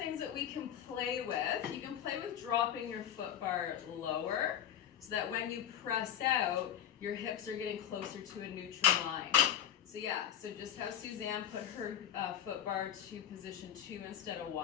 that we can play with, you can play with dropping your foot bar lower so that when you press out, your hips are getting closer to a neutral line. So yeah, so just how Suzanne put her foot bar to position 2 instead of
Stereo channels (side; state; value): right; quieter; 10.2 dB